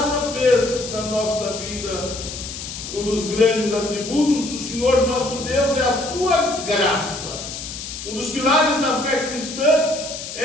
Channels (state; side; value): noise; left; hiss, 9 dB below the sound